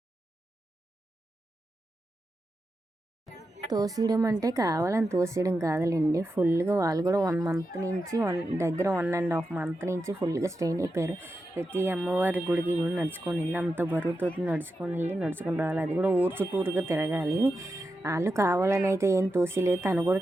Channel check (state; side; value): normal; both; correlation 0.89